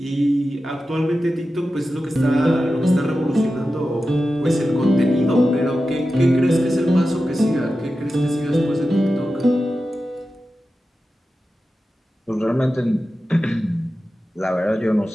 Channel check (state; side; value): normal; both; correlation 0.93